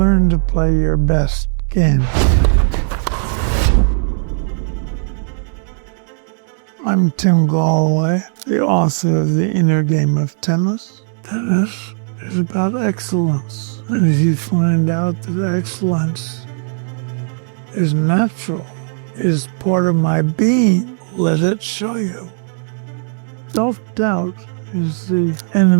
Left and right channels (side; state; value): left; silent; digital silence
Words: to play your best game? I'm Tim Gallwey, the author of The Inner Game of Tennis. Tennis is about excellence. And if you find out that excellence is natural, is part of my being, let it show you. Self-doubt is the